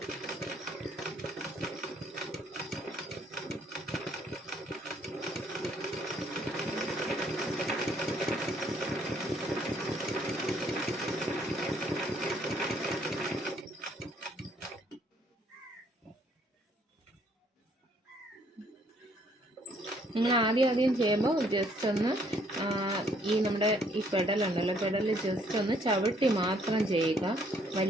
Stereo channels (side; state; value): both; normal; correlation 0.65